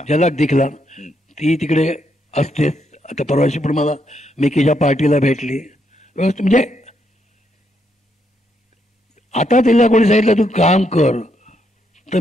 दिखला ती तिकडे असतेच. आता परवाशी पण मला मिकीच्या पार्टीला भेटली. म्हणजे आता तिला कोणी सांगितलं तू काम कर तर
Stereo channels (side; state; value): both; normal; correlation 0.77